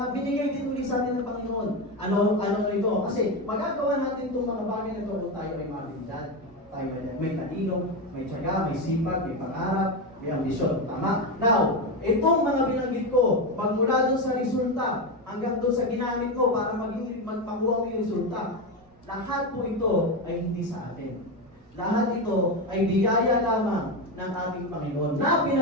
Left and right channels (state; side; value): noise; right; rumble, 29 dB below the sound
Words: binigay din ulit sa atin ng Panginoon. Ano ito? Kasi magagawa natin itong mga bagay na ito kung tayo ay mabilidad. Tayo ay may talino, may tiyaga, may sipag, may pangarap, may ambisyon. Tama? Now, itong mga binanggit ko, magmula doon sa resulta, hanggang doon sa ginamit ko para magpakuha mo yung resulta, lahat po ito ay hindi sa atin. Lahat ito ay biyaya lamang ng ating Panginoon na